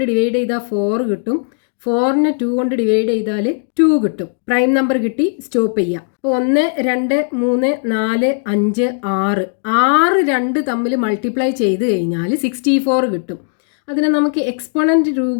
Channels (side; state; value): right; silent; digital silence